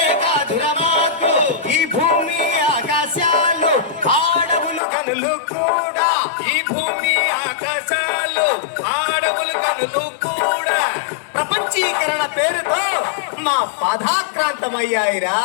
కాదురా మాకు. ఈ భూమి ఆకాశాలు ఆడవులు కనులు కూడా, ఈ భూమి ఆకాశాలు ఆడవులు కనులు కూడా ప్రపంచీకరణ పేరుతో మా పదాక్రాంతమయ్యాయిరా.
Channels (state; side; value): drops out; right; at 4.8 s